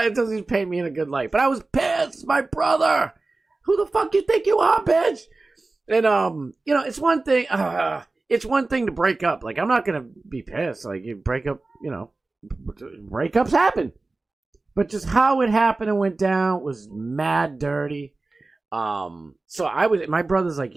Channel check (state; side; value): quieter; left; 3.4 dB